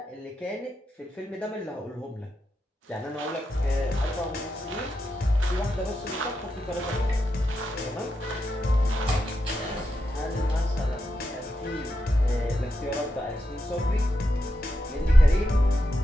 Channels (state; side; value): normal; both; correlation 0.86